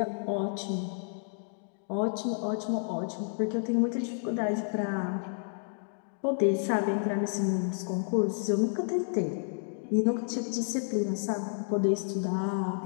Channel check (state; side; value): silent; right; digital silence